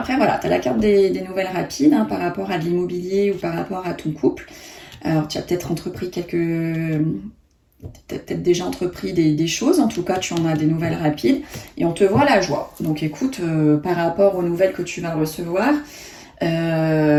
voilà, tu as la carte des nouvelles rapides par rapport à de l'immobilier ou par rapport à ton couple. Alors, tu as peut-être entrepris peut-être déjà entrepris des choses. En tout cas, tu en as des nouvelles rapides. Et on te voit la joie. Donc, écoute, par rapport aux nouvelles que tu vas recevoir,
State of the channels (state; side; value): identical; both; correlation 1.00